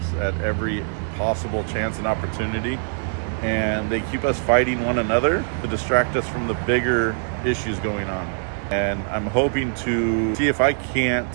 at every possible chance and opportunity. And they keep us fighting one another to distract us from the bigger issues going on. And I'm hoping to see if I can't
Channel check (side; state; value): left; silent; digital silence